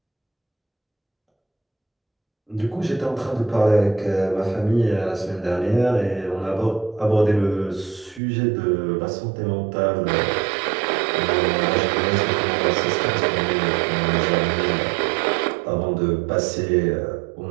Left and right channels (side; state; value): left; drops out; at 8.2 s